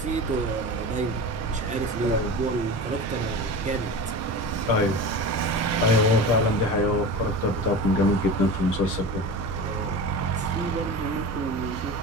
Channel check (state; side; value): normal; both; correlation 0.30